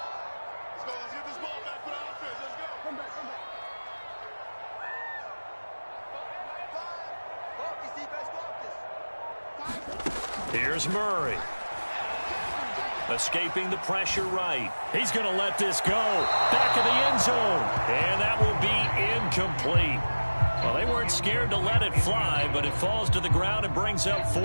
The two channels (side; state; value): both; inverted; correlation -1.00